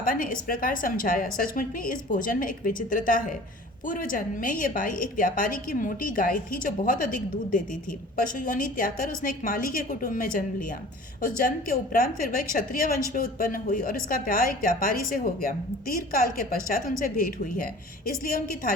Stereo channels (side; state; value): both; normal; correlation 0.44